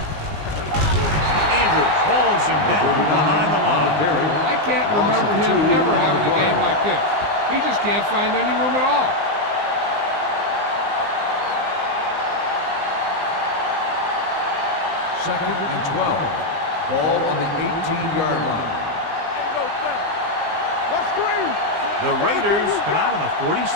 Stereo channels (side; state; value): left; late; 19 ms